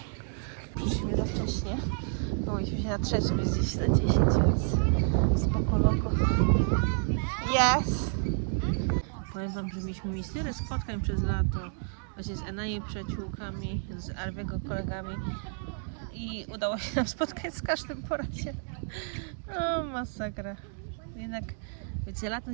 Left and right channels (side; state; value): left; silent; 58 dB below the other